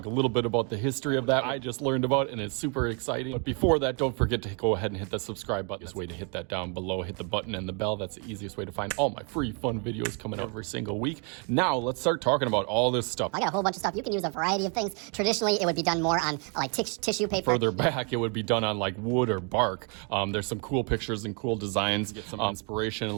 a little bit about the history of that I just learned about, and it's super exciting. But before that, don't forget to go ahead and hit that subscribe button. This way to hit that down below, hit the button and the bell. That's the easiest way to find all my free fun videos coming out every single week. Now let's start talking about all this stuff. I got a whole bunch of stuff. You can use a variety of things. Traditionally, it would be done more on like tissue paper. Further back, it would be done on like wood or bark. There's some cool pictures and cool designs. Get some inspiration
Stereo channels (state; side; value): quieter; left; 37.1 dB